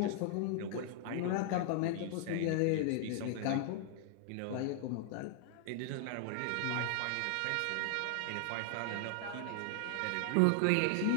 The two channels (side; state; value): both; different; correlation 0.00